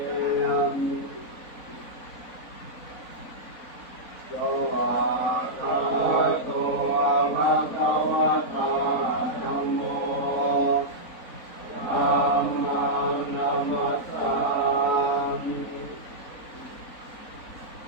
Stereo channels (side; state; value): right; late; 4.0 ms